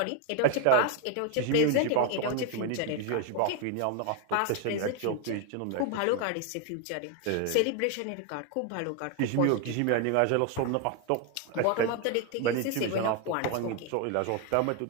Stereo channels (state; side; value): different; both; correlation 0.01